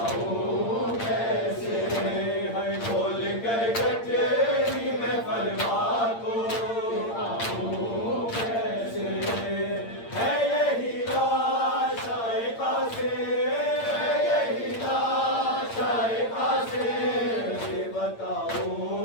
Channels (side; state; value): right; late; 8.7 ms